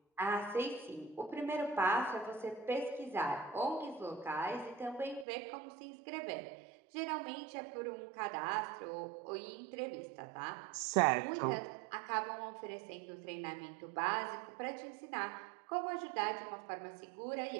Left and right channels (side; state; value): left; drops out; at 5.2 s